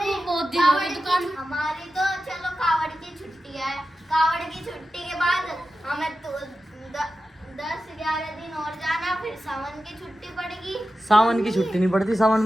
बहुत दिन हो गए दुकान। हमारी तो चलो कावड़ की छुट्टी है। कावड़ की छुट्टी के बाद हमें तो 10-11 दिन और जाना, फिर सावन की छुट्टी पड़ेगी। सावन की छुट्टी नहीं पड़ती, सावन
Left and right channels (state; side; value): normal; both; correlation 0.93